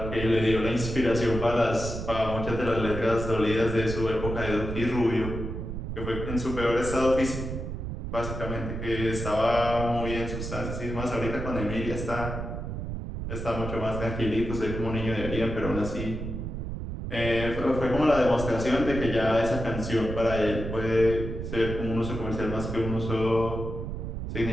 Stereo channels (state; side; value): noise; right; rumble, 5 dB below the sound